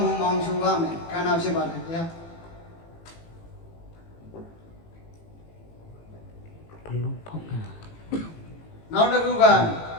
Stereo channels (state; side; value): late; right; 18 ms